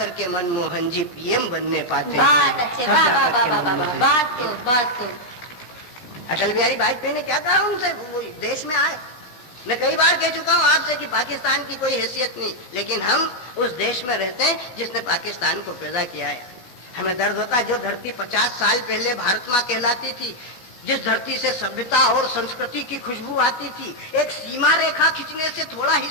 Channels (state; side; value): late; right; 17 ms